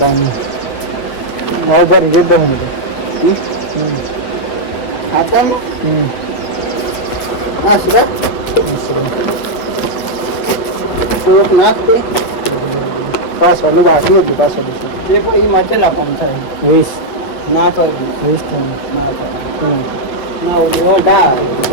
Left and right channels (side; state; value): right; late; 8.5 ms